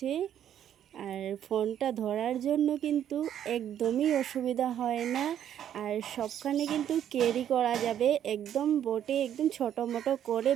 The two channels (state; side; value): quieter; left; 10.2 dB